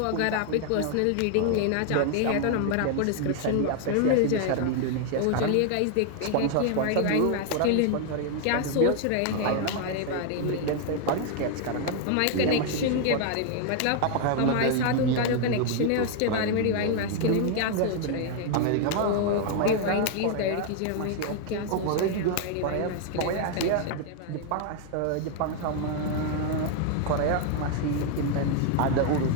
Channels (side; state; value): both; different; correlation 0.00